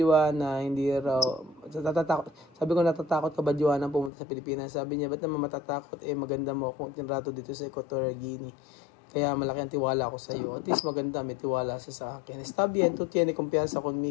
hindi raw, natatakot. Sabi ko, natatakot ka ba, Joanna, pumunta sa Pilipinas? Sabi niya, ba't naman matatakot? Maganda mo akong tinrato dito sa Equatorial Guinea. Kaya malaki ang tiwala ko sa iyo. At least maganda, may tiwala siya sa akin. Está bien, tú tienes confianza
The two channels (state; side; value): drops out; right; at 4.1 s